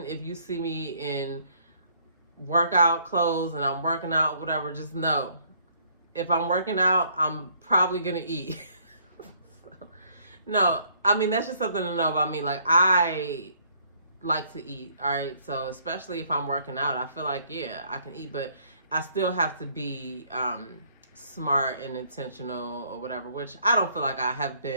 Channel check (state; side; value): inverted; both; correlation -0.64